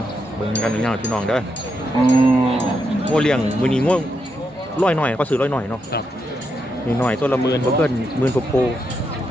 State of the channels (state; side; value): normal; both; correlation 0.82